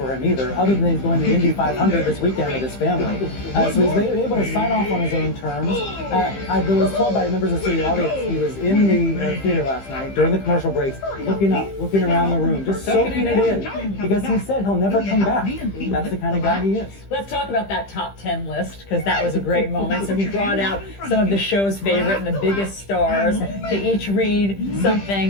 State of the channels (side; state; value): right; late; 15 ms